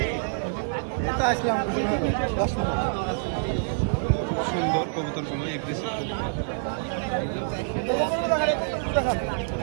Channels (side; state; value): left; silent; 61 dB below the other